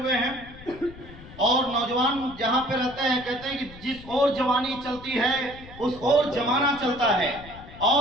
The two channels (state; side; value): noise; left; rumble, 17 dB below the sound